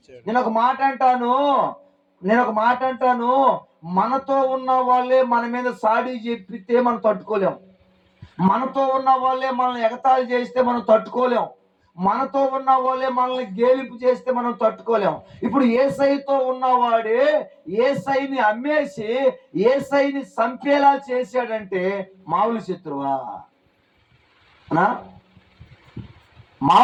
నేను ఒక మాట అంటాను, మనతో ఉన్న వాళ్ళే మన మీద సాడి చెప్పితే మనం తట్టుకోలేం, మనతో ఉన్న వాళ్ళే మనల్ని ఎగతాళి చేస్తే మనం తట్టుకోలేం, మనతో ఉన్న వాళ్ళే మనల్ని గేలింపు చేస్తే మనం తట్టుకోలేం. ఇప్పుడు యేసయ్యతో ఉన్నవాడే యేసయ్యని అమ్మేసి యేసయ్యని చంపేలా చేశాడంటే మామూలు శత్రువా?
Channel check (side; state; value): both; identical; correlation 1.00